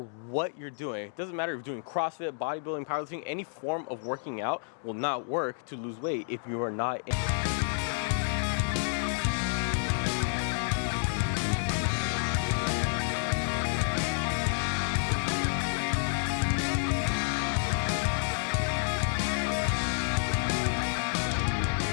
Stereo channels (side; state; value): right; silent; digital silence